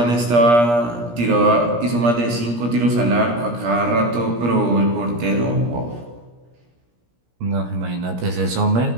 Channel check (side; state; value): left; late; 17 ms